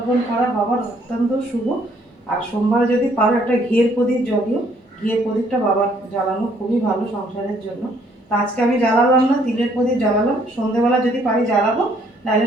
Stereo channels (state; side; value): normal; both; correlation 0.65